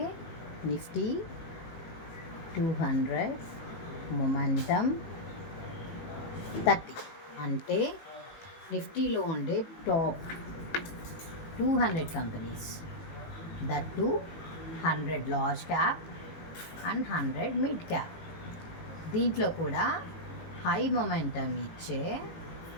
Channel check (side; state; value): right; late; 18 ms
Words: నిఫ్టీ 200 మొమెంటమ్ 30, అంటే నిఫ్టీలో ఉండే top 200 companies, that to 100 large cap and 100 mid cap. దీంట్లో కూడా హై మొమెంటమ్ ఇచ్చే